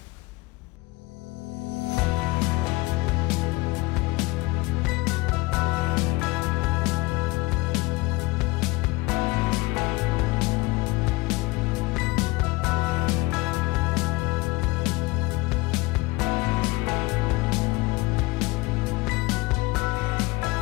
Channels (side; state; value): right; quieter; 22.6 dB